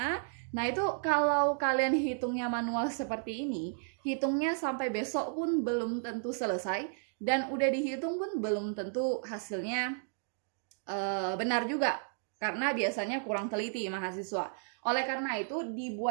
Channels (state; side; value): silent; left; digital silence